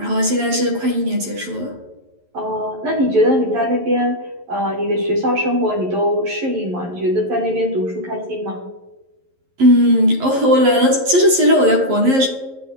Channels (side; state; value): left; late; 11 ms